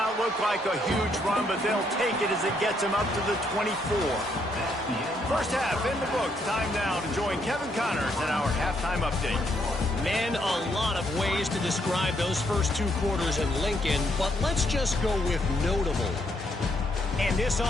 look like a huge run, but they'll take it as it gets him up to the 24. First half in the books. Time now to join Kevin Connors in our halftime update. Man, a lot of ways to describe those first 2 quarters in Lincoln, but let's just go with notable. And this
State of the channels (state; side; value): normal; both; correlation 0.73